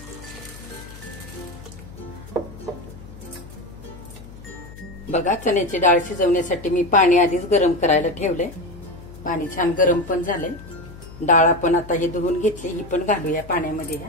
बघा, चण्याची डाळ शिजवण्यासाठी मी पाणी आधीच गरम करायला ठेवलंय। पाणी छान गरम पण झालंय। डाळ आपण आता ही धुवून घेतली, ही पण घालूया पाण्यामध्ये।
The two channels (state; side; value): noise; left; hum, 17 dB below the sound